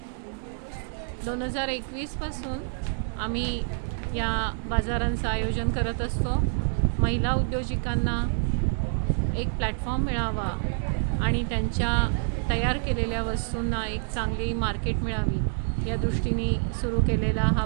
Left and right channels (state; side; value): silent; left; digital silence